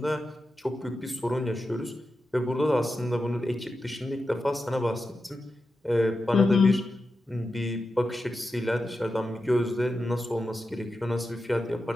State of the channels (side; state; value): both; normal; correlation 0.90